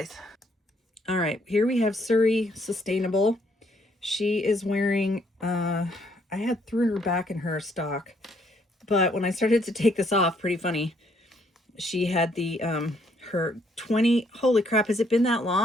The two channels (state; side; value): normal; both; correlation 0.69